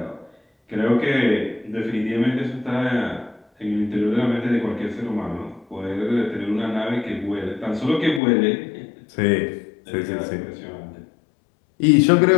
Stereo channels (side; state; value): right; drops out; at 8.2 s